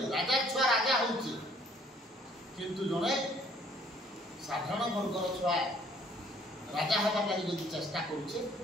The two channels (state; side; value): normal; both; correlation 0.60